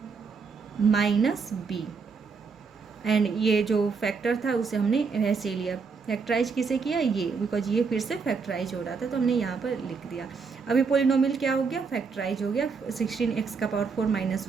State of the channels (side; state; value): left; quieter; 5.1 dB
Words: minus b. And ये जो फैक्टर था उसे हमने वैसे लिया, फैक्टराइज किसे किया, ये, बिकॉज ये फिर से फैक्टराइज हो रहा था तो हमने यहाँ पर लिख दिया। अभी पोलिनोमियल क्या हो गया, फैक्टराइज हो गया 16x का पावर 4 माइनस